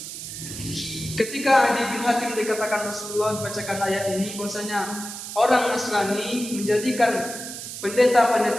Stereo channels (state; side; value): noise; right; hiss, 9 dB below the sound